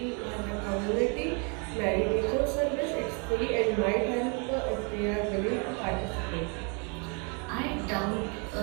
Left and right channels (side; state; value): left; quieter; 35.6 dB